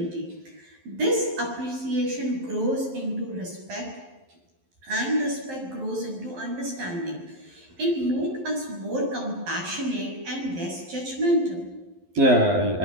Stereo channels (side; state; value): left; late; 11 ms